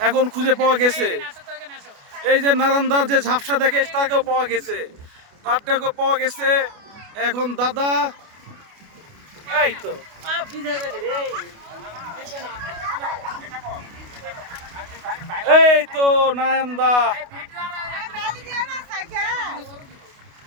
এখন খুঁজে পাওয়া গেছে। এই যে নারায়ণ দার যে ঝাপসা দেখে তাকেও পাওয়া গেছে, তারটাকেও পাওয়া গেছে। এখন দাদা এই তো এই তো নারায়ণ দা,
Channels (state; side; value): late; left; 29 ms